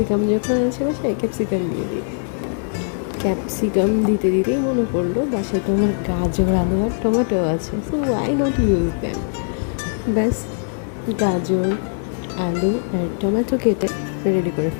যখন আছে বাসায়, ক্যাপসিকাম দিয়ে দিই। ক্যাপসিকাম দিতে দিতেই মনে পড়লো বাসায় তো আমার গাজর, আলু আর টমেটো আছে, so why not use them. ব্যাস গাজর, আলু আর টমেটো কেটে রেডি করে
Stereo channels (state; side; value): silent; right; digital silence